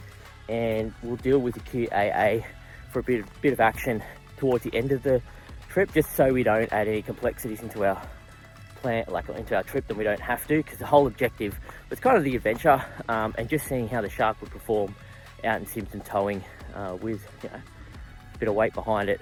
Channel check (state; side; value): identical; both; correlation 1.00